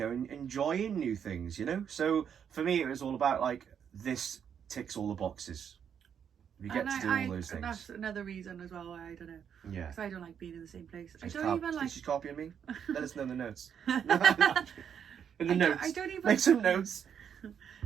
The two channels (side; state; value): left; quieter; 8.0 dB